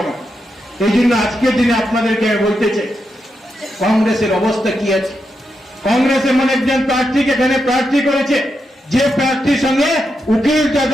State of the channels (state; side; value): normal; both; correlation 0.85